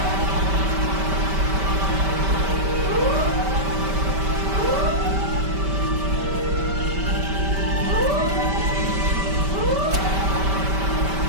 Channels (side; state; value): left; late; 5.2 ms